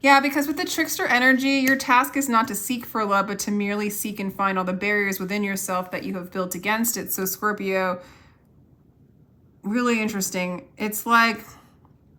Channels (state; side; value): identical; both; correlation 1.00